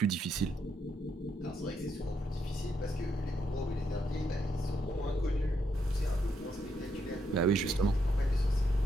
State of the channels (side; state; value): both; normal; correlation 0.78